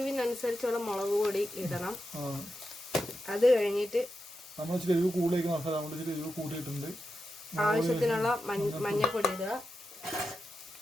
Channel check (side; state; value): both; normal; correlation 0.89